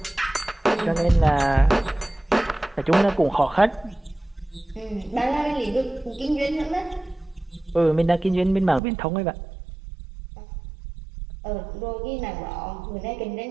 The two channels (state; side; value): drops out; left; at 8.8 s